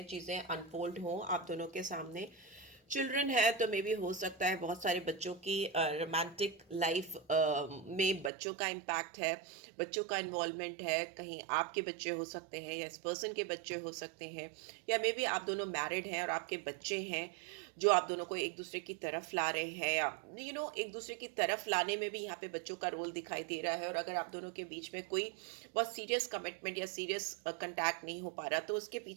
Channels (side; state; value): left; drops out; at 8.3 s